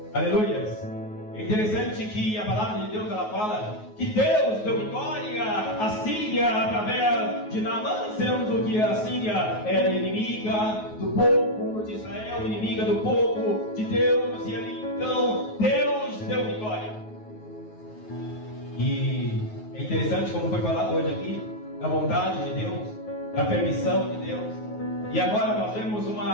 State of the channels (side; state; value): right; late; 9.4 ms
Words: Aleluias. É interessante que a palavra de Deus ela fala que Deus deu vitória à Síria através de Naamã, sendo que a Síria era inimiga do povo de Israel, inimiga do povo de Deus, e ali então Deus deu vitória. E é interessante como foi falado hoje aqui, da vontade de Deus, da permissão de Deus, e agora nós vemos uma